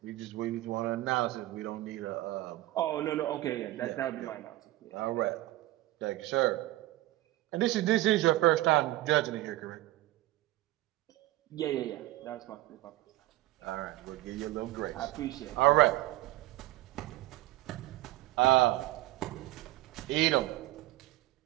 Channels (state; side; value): quieter; left; 16.9 dB